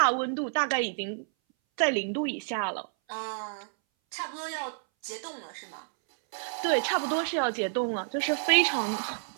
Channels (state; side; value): silent; left; 58 dB below the other